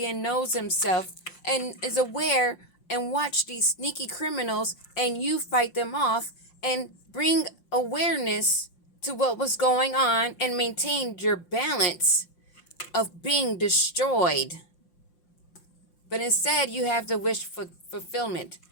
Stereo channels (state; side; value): late; right; 5.7 ms